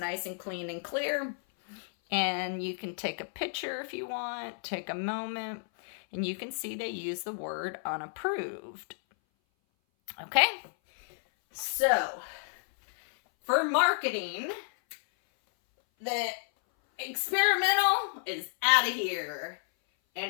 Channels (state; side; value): silent; right; 57 dB below the other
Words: and clean and clear. And you can take a picture if you want, take a moment, and you can see they use the word unapproved. Okay? So, for marketing, the experimental is out of here